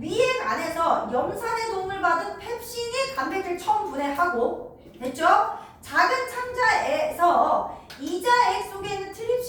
안에서 염산의 도움을 받은 펩신이 단백질 처음 분해하고, 됐죠? 작은 창자에서 이자액 속에 있는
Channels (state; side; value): identical; both; correlation 1.00